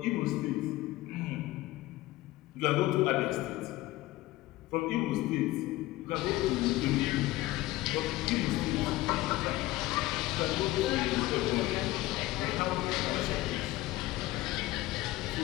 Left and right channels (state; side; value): quieter; right; 17.6 dB